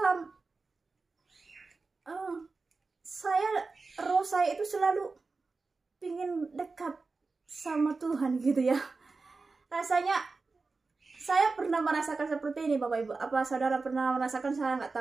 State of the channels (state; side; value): quieter; left; 4.0 dB